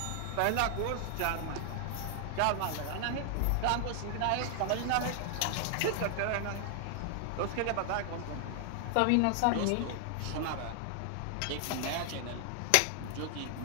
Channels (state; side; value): different; both; correlation 0.00